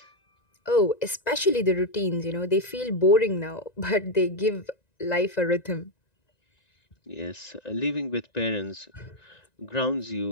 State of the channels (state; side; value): late; right; 1.9 ms